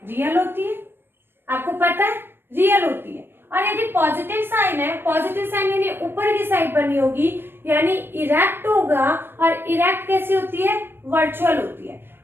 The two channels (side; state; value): left; late; 0.10 ms